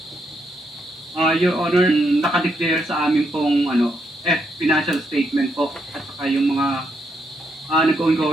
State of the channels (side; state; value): both; normal; correlation 0.78